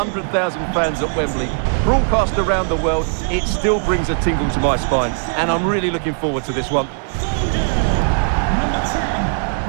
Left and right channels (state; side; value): silent; left; 65 dB below the other